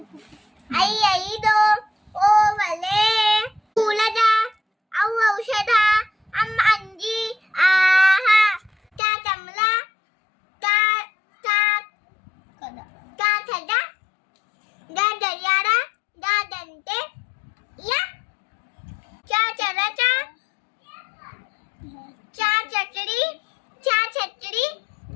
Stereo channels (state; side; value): drops out; right; at 9.0 s